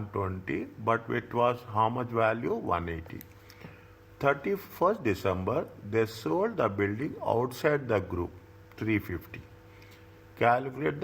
but it was how much value? 180. 31st December, they sold the building outside the group, 350. Calculate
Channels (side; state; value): both; identical; correlation 1.00